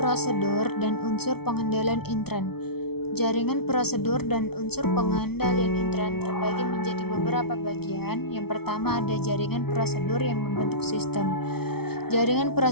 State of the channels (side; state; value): right; late; 0.95 ms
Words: prosedur dan unsur pengendalian intern. Jaringan prosedur dan unsur pengendalian intern terbagi menjadi beberapa bagian. Yang pertama ada jaringan prosedur yang membentuk sistem. Jaringan